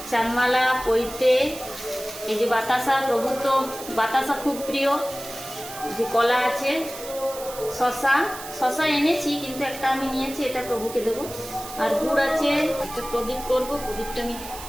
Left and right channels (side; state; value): right; noise; hiss, 12 dB below the sound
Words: চানমালা, পৈতে, এই যে বাতাসা, প্রভু তো বাতাসা খুব প্রিয়। যে কলা আছে, শশা এনেছি, কিন্তু একটা আমি নিয়েছি, এটা প্রভুকে দেবো। আর গুড় আছে, একটা প্রদীপ করবো, প্রদীপটা আমি